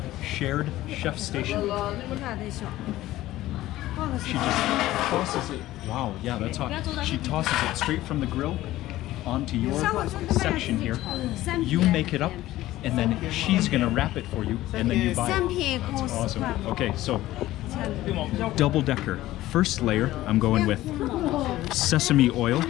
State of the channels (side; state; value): right; quieter; 15.7 dB